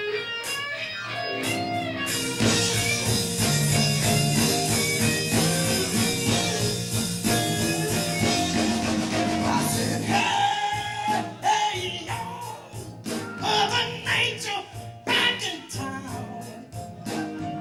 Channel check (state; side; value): identical; both; correlation 1.00